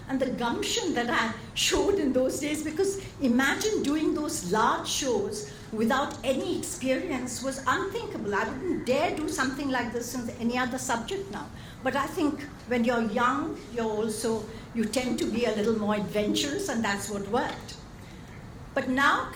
and the gumption that I showed in those days, because imagine doing those large shows without any experience was unthinkable. I wouldn't dare do something like this in any other subject now. But I think when you're young, you tend to be a little more adventurous, and that's what worked. But now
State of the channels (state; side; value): identical; both; correlation 1.00